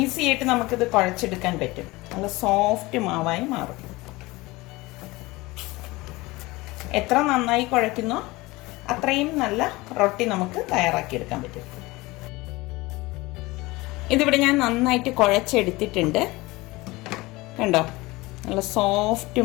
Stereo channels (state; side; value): quieter; right; 21.4 dB